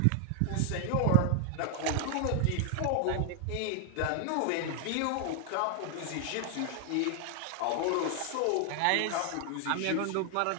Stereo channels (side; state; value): both; different; correlation 0.00